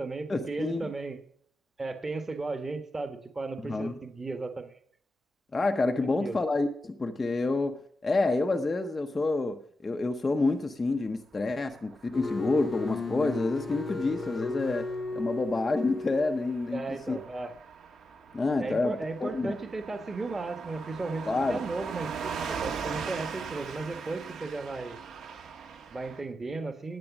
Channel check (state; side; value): normal; both; correlation 0.89